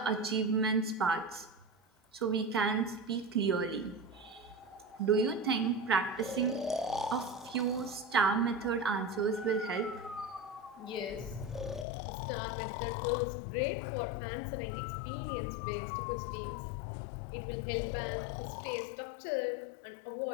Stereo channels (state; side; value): drops out; right; at 11.9 s